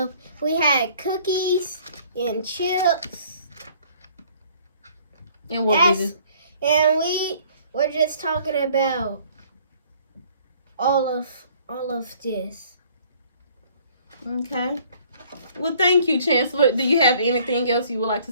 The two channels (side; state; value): both; inverted; correlation -0.57